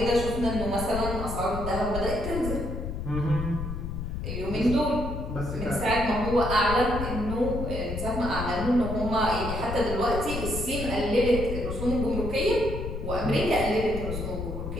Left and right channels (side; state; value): left; noise; rumble, 5 dB below the sound